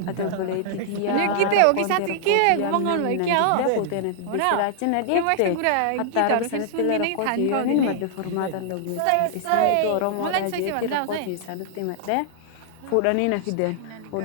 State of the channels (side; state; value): both; different; correlation -0.01